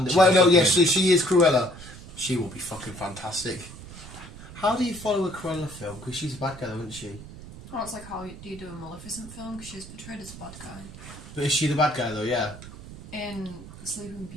Well, no, yes, she is Cruella. She will be fucking fantastic. How do you follow a Cruella film? Because she's a bad guy, isn't she? Oh, it's like how do you do a Maleficent film? Because she's portrayed as a bad guy. But is she the bad guy though? Yeah. In Sleeping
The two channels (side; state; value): right; noise; rumble, 15 dB below the sound